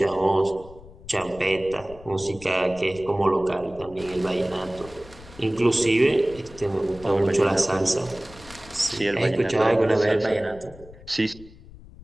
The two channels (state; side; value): noise; left; rumble, 20 dB below the sound